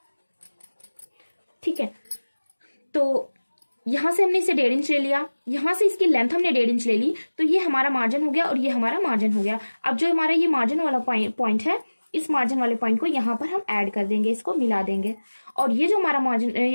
ठीक है, तो यहाँ से हमने इसे 1.5 इंच ले लिया, यहाँ से इसकी लेंथ हमने 1.5 इंच ले ली, तो ये हमारा मार्जिन हो गया और ये हमारा मार्जिन हो गया। अब जो हमारा ये मार्जिन वाला पॉइंट है, इस मार्जिन वाले पॉइंट को यहाँ पर हम ऐड कर देंगे, इसको मिला देंगे। और ये जो हमारा मार्जिन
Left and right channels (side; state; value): both; inverted; correlation -1.00